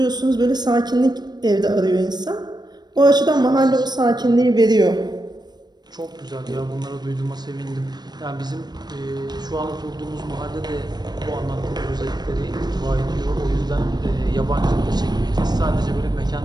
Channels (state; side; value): late; left; 0.20 ms